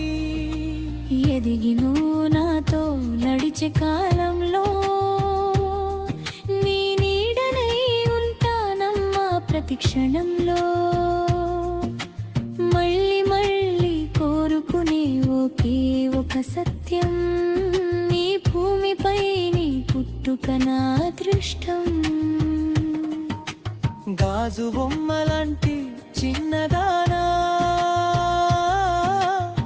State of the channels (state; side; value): identical; both; correlation 1.00